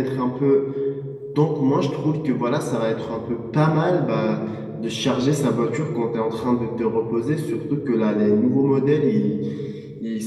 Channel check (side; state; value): both; identical; correlation 1.00